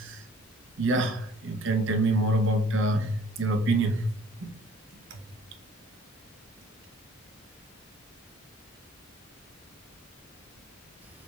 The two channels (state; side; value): normal; both; correlation 0.54